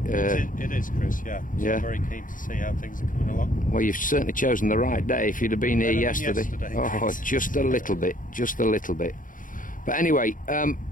It is, Chris, yeah. So yeah. I'm very keen to see how things are coming along. Well, you've certainly chosen the right day. If you'd have been here yesterday. Oh, just a little bit, just a little bit. But anyway,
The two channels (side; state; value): right; late; 0.39 ms